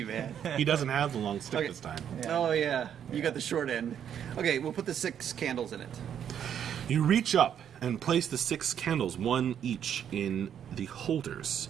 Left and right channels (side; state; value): left; quieter; 9.1 dB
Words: man. He doesn't have the long stick Okay. this time. Oh yeah, you got the short end. Okay, we'll put the 6 candles in it. You reach up and place the 6 candles, one each, in the holders.